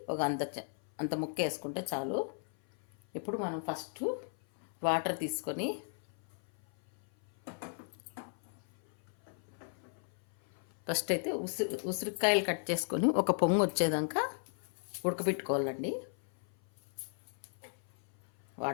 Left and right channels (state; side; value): silent; right; 54 dB below the other